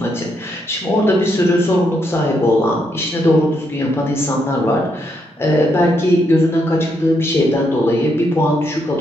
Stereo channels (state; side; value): normal; both; correlation 0.78